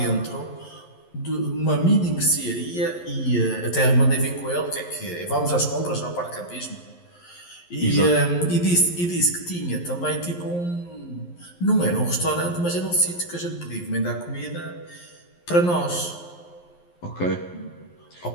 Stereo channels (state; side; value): late; right; 11 ms